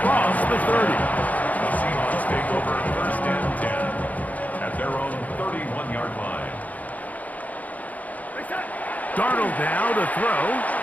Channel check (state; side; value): late; right; 0.076 ms